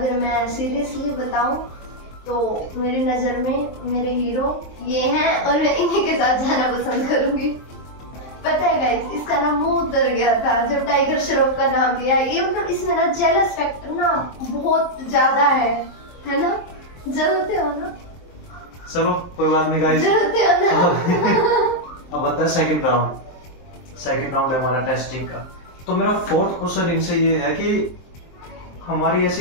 मैं सीरियसली बताऊं तो मेरी नजर में मेरे हीरो ये हैं और मैं इन्हीं के साथ जाना पसंद करूंगी। पता है गाइस, इसका ना मुंह उतर गया था जब टाइगर श्रॉफ का नाम लिया। ये मतलब इसमें ना जेलस फैक्टर ना बहुत ज्यादा है ना? जलते हो ना? चलो कोई बात नहीं गाइस, जलते हो ना? अब आता है सेकंड राउंड। सेकंड राउंड है हमारा टेस्टिंग का। तो मेरा फोर्थ क्वेश्चन इनसे ये है कि हमारी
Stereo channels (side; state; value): right; late; 23 ms